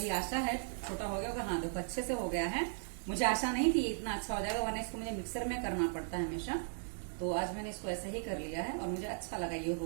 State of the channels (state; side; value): silent; left; digital silence